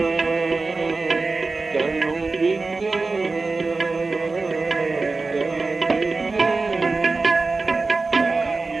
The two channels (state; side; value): quieter; left; 3.8 dB